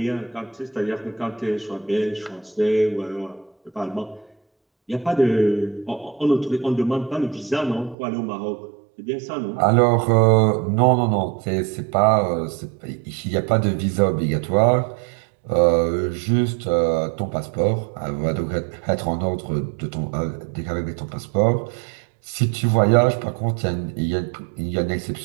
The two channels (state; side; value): drops out; left; at 8.0 s